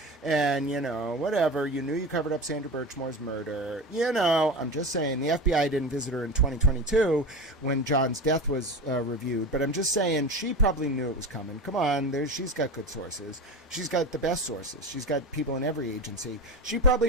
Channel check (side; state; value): both; normal; correlation 0.26